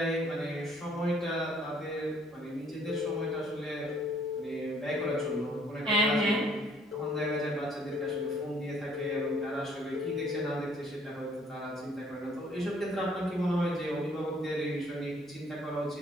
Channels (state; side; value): normal; both; correlation 0.62